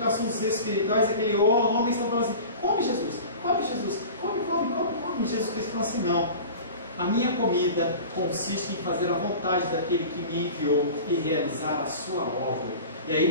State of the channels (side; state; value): both; inverted; correlation -0.37